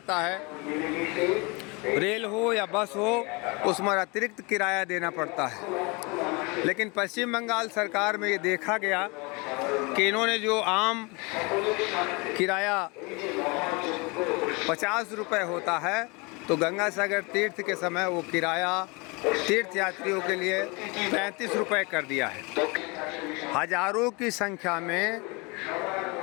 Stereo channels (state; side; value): quieter; right; 28.3 dB